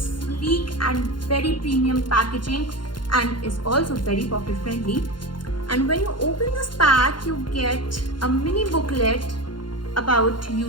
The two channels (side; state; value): right; late; 0.71 ms